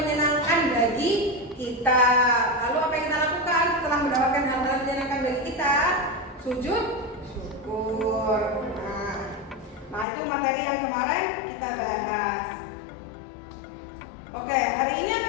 bagi kita. Lalu apa yang kita lakukan setelah mendapatkan hal-hal yang menyenangkan bagi kita? Sujud syukur. Nah, itu materi yang kemarin kita bahas. Oke, hari ini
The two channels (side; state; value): right; drops out; at 10.1 s